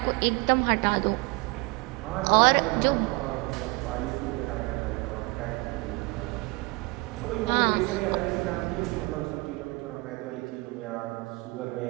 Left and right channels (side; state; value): left; quieter; 25.6 dB